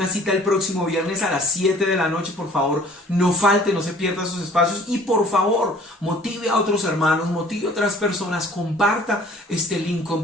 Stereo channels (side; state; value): both; normal; correlation 0.52